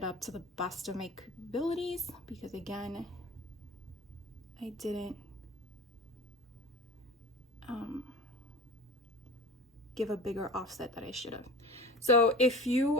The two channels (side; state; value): both; normal; correlation 0.38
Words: up to the best of my capabilities, because again, I didn't give a bigger offset that I should have. So if